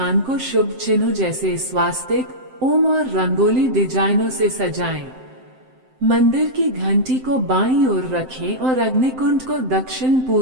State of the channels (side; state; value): left; late; 7.7 ms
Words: को शुभ चिन्हों जैसे स्वास्तिक, ओम और रंगोली डिजाइनों से सजाएं। मंदिर की घंटी को बाईं ओर रखें और अग्निकुंड को दक्षिण